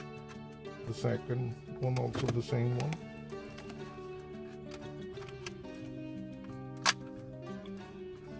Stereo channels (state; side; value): identical; both; correlation 1.00